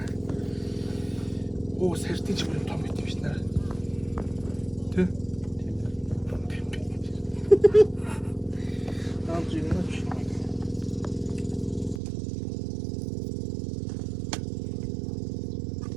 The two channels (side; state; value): left; drops out; at 12.0 s